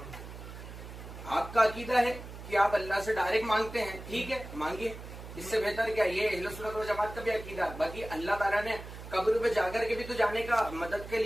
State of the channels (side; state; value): right; noise; hum, 12 dB below the sound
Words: आपका अकीदा है कि आप अल्लाह से डायरेक्ट मांगते हैं, ठीक है, मांगिए, इससे बेहतर क्या। ये अहले सुन्नत व जमात का भी अकीदा। बाकी अल्लाह ताला ने कब्र पे जाकर के भी तो जाने का मदद के